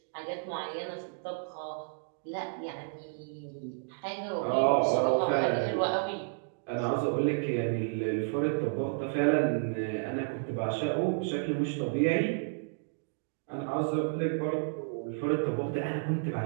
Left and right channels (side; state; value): left; silent; digital silence